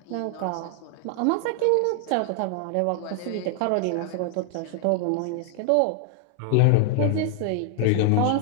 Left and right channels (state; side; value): different; both; correlation 0.00